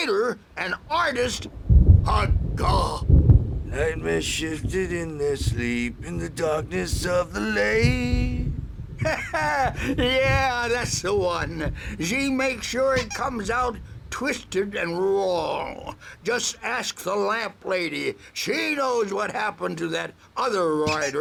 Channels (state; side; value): identical; both; correlation 1.00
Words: an artist, a god. Nightmare shifted in their sleep in the darkness of the lake. Yeah, that's the one. She makes sure it comes out twisted and wrong. Just ask the lamp lady. She knows what happened to that other